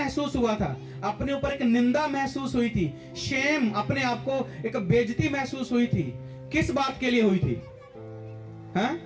हुआ था, अपने ऊपर एक निंदा महसूस हुई थी, शेम, अपने आप को एक बेइज्जती महसूस हुई थी। किस बात के लिए हुई थी? हाँ?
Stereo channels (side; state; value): both; identical; correlation 1.00